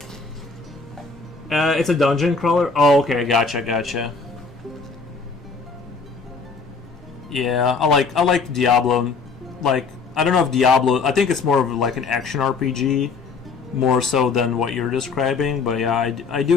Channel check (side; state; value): right; quieter; 4.5 dB